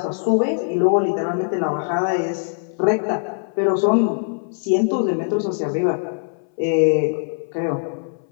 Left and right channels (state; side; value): silent; right; 61 dB below the other